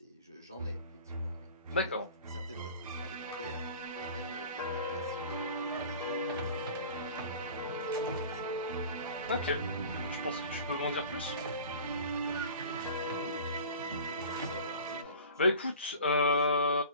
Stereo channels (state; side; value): inverted; both; correlation -0.40